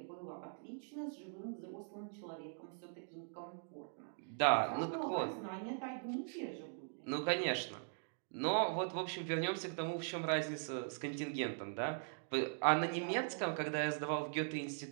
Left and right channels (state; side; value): silent; left; digital silence